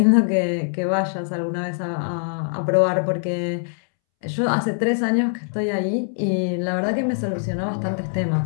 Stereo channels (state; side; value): silent; right; 64 dB below the other